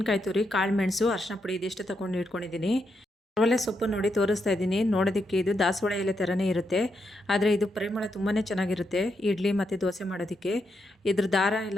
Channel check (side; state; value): both; normal; correlation 0.82